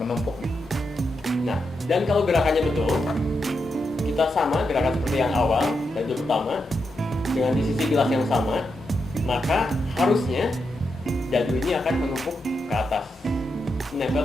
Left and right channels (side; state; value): both; normal; correlation 0.85